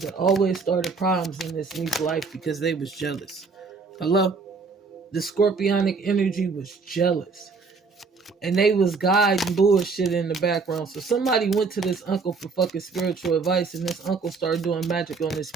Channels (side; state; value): left; quieter; 4.6 dB